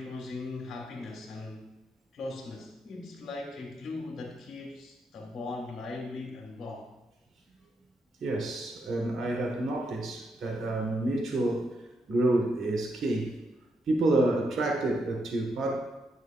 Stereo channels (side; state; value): both; normal; correlation 0.80